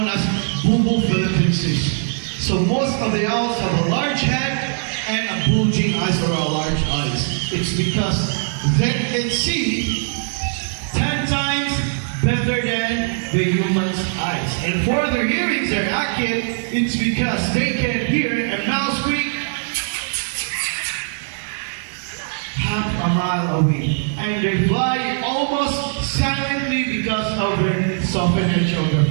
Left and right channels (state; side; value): silent; left; digital silence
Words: as Bubo philippinensis. So most of the owls have a large head and a bulging eyes or a large eyes. It's because they can see 10 times better than the human's eyes. And for their hearings are accurate, it's because they can hear a mouse squeak half a mile away, and they fly almost silently because of their softened edge of their